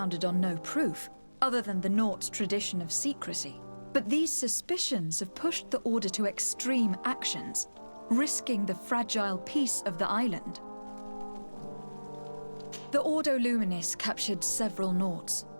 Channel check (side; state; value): both; inverted; correlation -1.00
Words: on no proof, other than the Nords' tradition of secrecy. But these suspicions have pushed the Order to extreme actions, risking the fragile peace of the island. The Ordo Luminis captured several Nords,